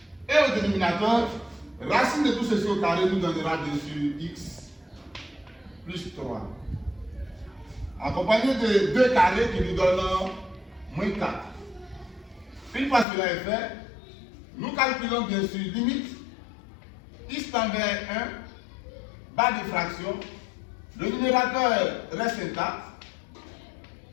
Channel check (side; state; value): right; drops out; at 13.1 s